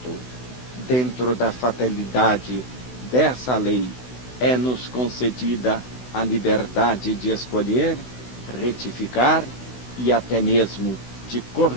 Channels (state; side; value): late; right; 16 ms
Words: Dentro da fatalidade dessa lei, é-nos concedida a liberdade de escolher, retificar e até mesmo de